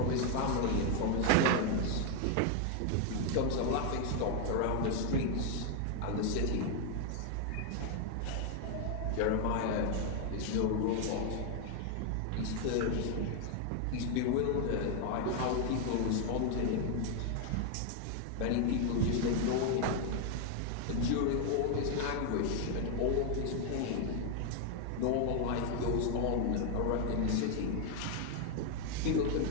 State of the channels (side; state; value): both; different; correlation 0.01